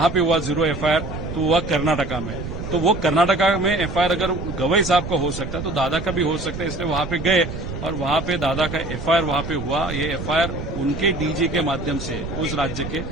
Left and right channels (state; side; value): noise; right; rumble, 7 dB below the sound